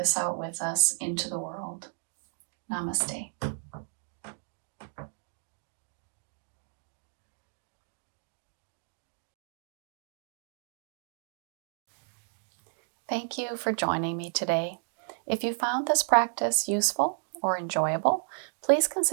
out with us into the world. Namaste. Thank you for joining me today. If you found this practice useful or enjoyable, please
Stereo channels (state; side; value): silent; left; digital silence